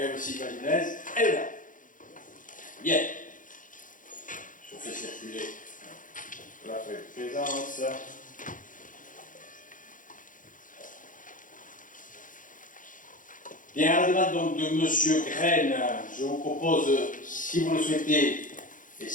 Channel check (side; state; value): right; late; 0.38 ms